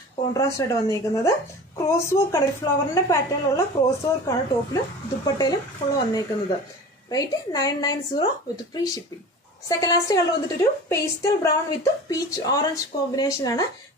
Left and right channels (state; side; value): normal; both; correlation 0.37